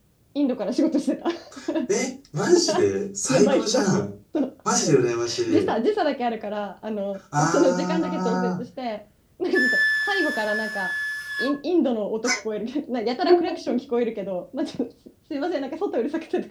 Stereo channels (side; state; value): both; identical; correlation 1.00